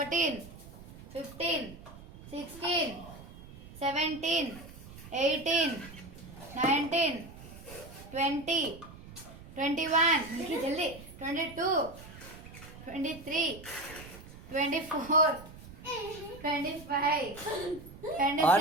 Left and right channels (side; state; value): right; noise; rumble, 17 dB below the sound